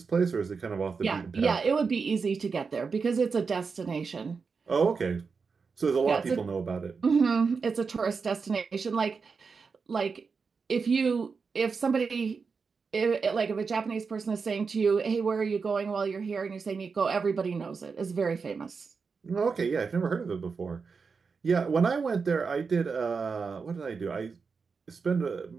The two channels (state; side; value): quieter; left; 5.1 dB